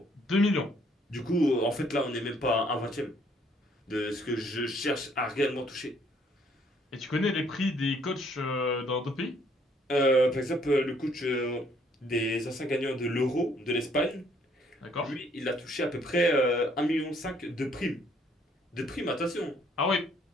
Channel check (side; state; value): both; normal; correlation 0.65